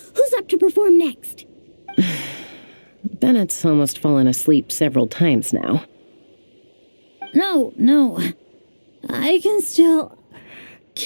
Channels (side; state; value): both; inverted; correlation -1.00